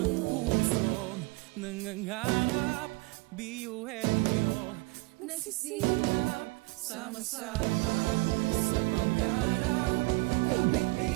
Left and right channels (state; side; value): quieter; left; 25.5 dB